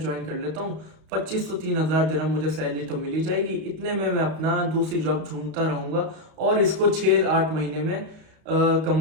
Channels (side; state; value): left; late; 32 ms